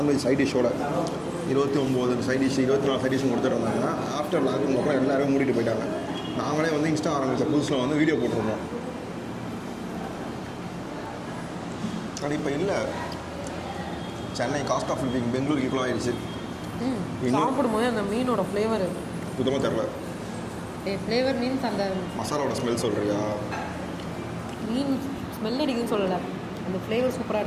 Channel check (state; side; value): identical; both; correlation 1.00